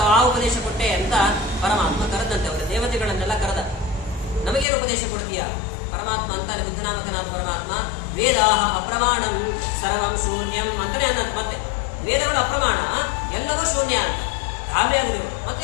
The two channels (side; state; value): right; drops out; at 4.7 s